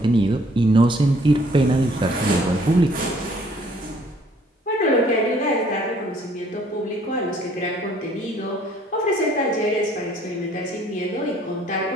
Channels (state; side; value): normal; both; correlation 0.60